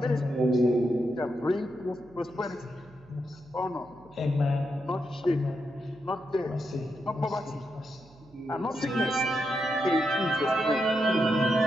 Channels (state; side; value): noise; right; hum, 26 dB below the sound